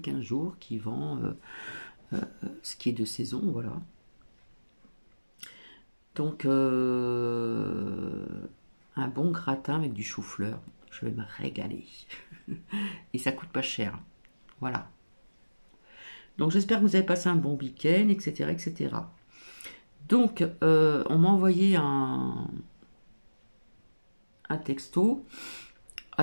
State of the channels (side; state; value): both; inverted; correlation -1.00